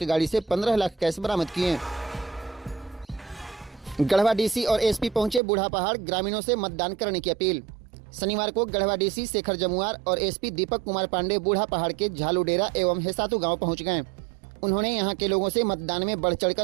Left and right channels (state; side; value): drops out; left; at 5.4 s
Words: गाड़ी से 15 लाख कैश बरामद किए। गढ़वा डीसी और एसपी पहुंचे बूढ़ा पहाड़, ग्रामीणों से मतदान करने की अपील। शनिवार को गढ़वा डीसी शेखर जमुआर और एसपी दीपक कुमार पांडे बूढ़ा पहाड़ के झालूडेरा एवं हेसातू गांव पहुंच गए। उन्होंने यहां के लोगों से मतदान में बढ़